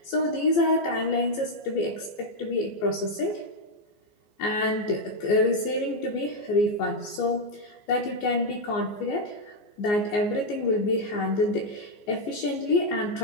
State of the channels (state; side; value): late; right; 14 ms